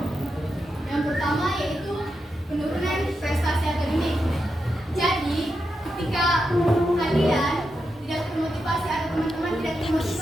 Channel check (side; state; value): both; normal; correlation 0.86